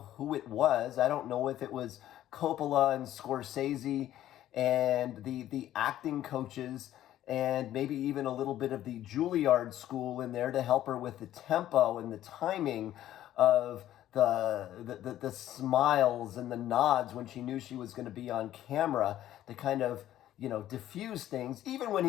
it was. I don't know if it was Coppola and Scorsese and the acting coaches and maybe even a little bit of the Juilliard school in there to help her with the tempo and the timing of the smiles and the nods when she knew she was going to be on camera to kind of, diffuse things. Even when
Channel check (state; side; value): quieter; right; 12.8 dB